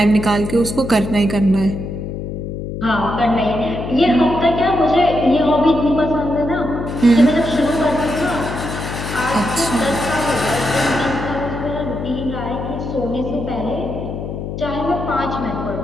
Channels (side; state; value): left; noise; hum, 6 dB below the sound